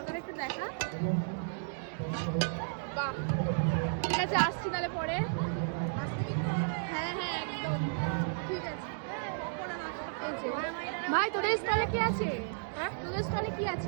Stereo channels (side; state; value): left; silent; digital silence